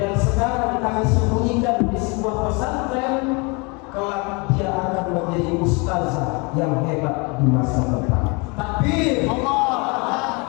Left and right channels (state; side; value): quieter; right; 29.8 dB